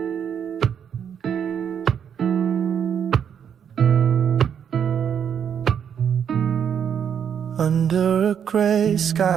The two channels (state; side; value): quieter; left; 8.1 dB